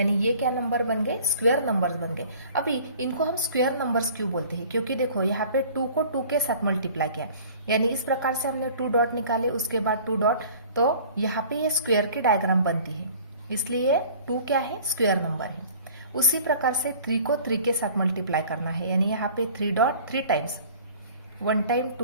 ये क्या नंबर बन गए, स्क्वायर नंबर्स बन गए। अभी इनको हम स्क्वायर नंबर्स क्यों बोलते हैं, क्योंकि देखो यहाँ पे 2 को 2 के साथ मल्टीप्लाई किया, यानी इस प्रकार से हमने 2 डॉट निकाले, उसके बाद 2 डॉट, तो यहाँ पे ये स्क्वायर की डायग्राम बनती है, इसलिए 2 क्या है, स्क्वायर नंबर है। उसी प्रकार से 3 को 3 के साथ मल्टीप्लाई करना है, यानी यहाँ पे 3 डॉट 3 टाइम्स, 1 टाइम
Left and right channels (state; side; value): inverted; both; correlation -0.48